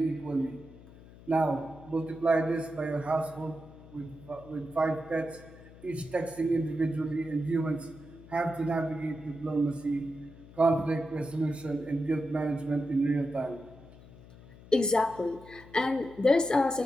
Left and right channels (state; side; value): noise; left; hum, 20 dB below the sound